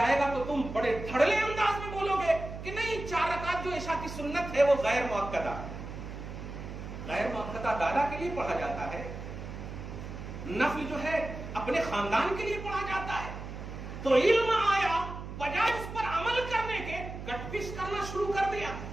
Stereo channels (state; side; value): noise; right; hum, 9 dB below the sound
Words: گا تو تم بڑے دھڑلے انداز میں بولو گے کہ نہیں، 4 رکعت جو عشاء کی سنت ہے وہ غیر مؤکدہ ہے۔ غیر مؤکدہ دادا کے لیے پڑھا جاتا ہے، نفل جو ہے اپنے خاندان کے لیے پڑھا جاتا ہے۔ تو علم آیا، بجائے اس پر عمل کرنے کے کٹ پیس کرنا شروع کر دیا۔